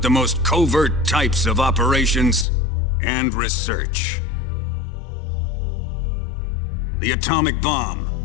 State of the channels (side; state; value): right; drops out; at 2.5 s